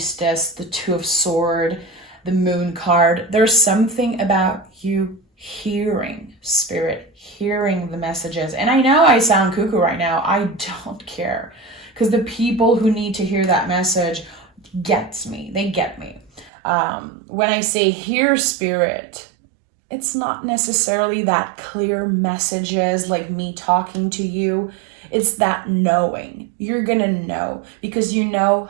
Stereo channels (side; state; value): left; drops out; at 16.5 s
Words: the Two of Swords, the Moon card. There's something about you hearing Spirit, hearing the messages. And I know I sound cuckoo right now. I don't care. Because the people who need to hear that message gets me. They get me. When I say hear Spirit, it's not necessarily that clear messages like me talking to you. It's that knowing. You're going to know because you know